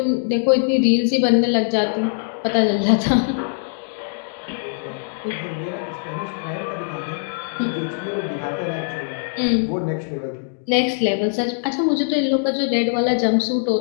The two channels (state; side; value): silent; right; digital silence